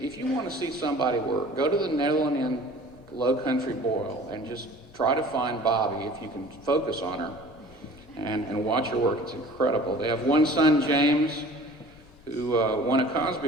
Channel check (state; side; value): normal; both; correlation 0.46